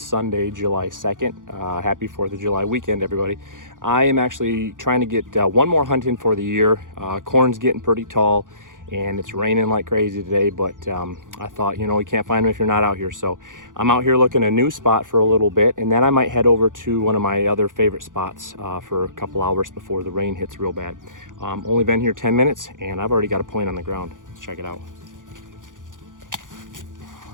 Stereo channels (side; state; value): left; late; 0.88 ms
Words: July 2nd. Happy 4th of July weekend, everybody. I am actually trying to get one more hunt in for the year. Corn's getting pretty tall and it's raining like crazy today, but I thought, you can't find them if you're not out here. So I'm out here looking a new spot for a little bit, and then I might head over to one of my other favorite spots for a couple hours before the rain hits real bad. Only been here 10 minutes and I've already got a point on the ground. Let's check it out.